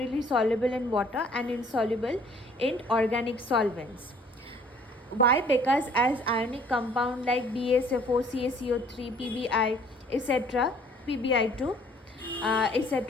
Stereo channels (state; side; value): normal; both; correlation 0.57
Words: soluble in water and insoluble in organic solvents. Why? Because as ionic compound like BaSFO, CaCO3, PbI, etc., PbI2,